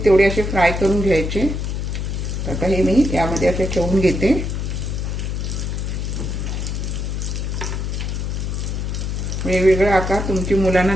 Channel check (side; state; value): left; noise; hum, 2 dB below the sound